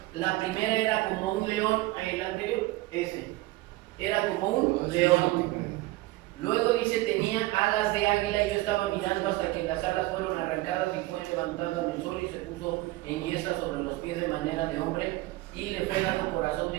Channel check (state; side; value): quieter; left; 19.2 dB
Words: La primera era como un león, el anterior, ese, era como un león. Luego dice, tenía alas de águila, y yo estaba mirando hasta que las alas fueron arrancadas y fue levantado en el sol y se puso en yesca sobre los pies de manera de hombre y le fue dado corazón